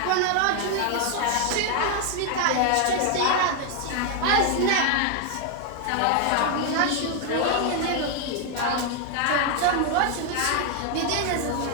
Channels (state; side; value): different; both; correlation 0.01